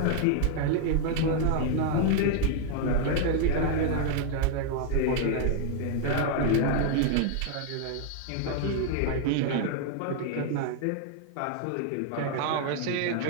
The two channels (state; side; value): different; both; correlation 0.00